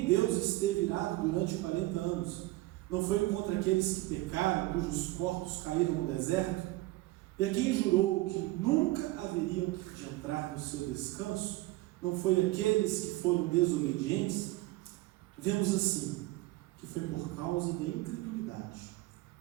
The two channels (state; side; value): quieter; left; 18.4 dB